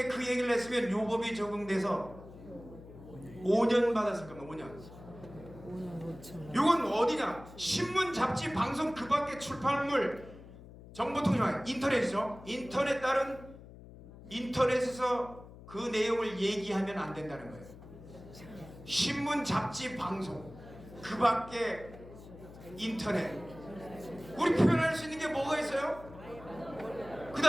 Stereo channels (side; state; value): left; noise; hum, 17 dB below the sound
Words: 그 얘기를 했으면 요 법이 적용돼서 5년 받았을 겁니다. 5년. 요건 어디냐? 신문, 잡지, 방송 그 밖에 출판물, 정보통신망, 인터넷이죠. 인터넷 따른 인터넷에서 그 내용을 얘기하면 안 된다는 거예요. 신문, 잡지, 방송 그 밖에 인터넷. 우리 표현할 수 있는 게 뭐가 있어요? 그